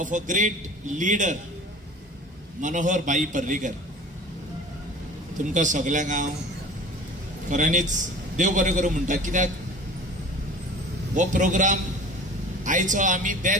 of a great leader Manohar भाई पर्रीकर. तुमकां सगळ्यांक हांव खऱ्यांनीच देव बरें करूं म्हणटा. कित्याक हो प्रोग्राम आयचो आमी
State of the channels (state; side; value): normal; both; correlation 0.41